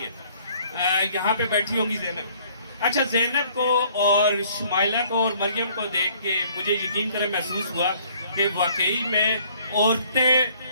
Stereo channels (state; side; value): inverted; both; correlation -0.59